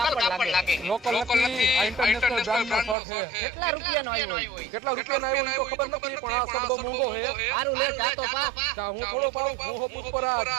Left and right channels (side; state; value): left; drops out; at 3.0 s